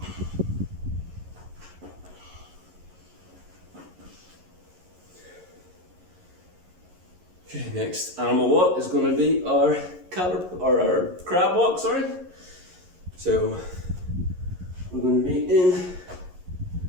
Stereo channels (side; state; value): left; late; 11 ms